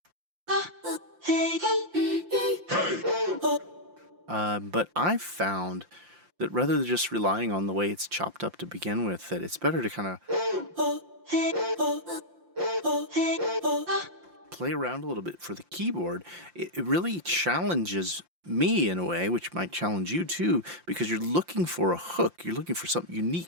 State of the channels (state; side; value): late; left; 5.8 ms